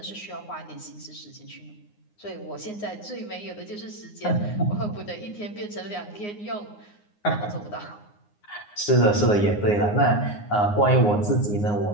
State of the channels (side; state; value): right; late; 9.6 ms